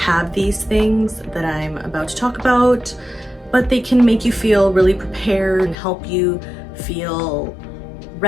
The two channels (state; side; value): drops out; right; at 5.8 s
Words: these things that I'm about to talk about, but they can make you feel really prepared and help you feel